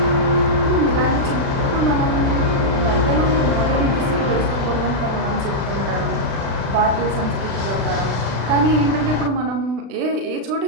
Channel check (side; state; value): left; late; 36 ms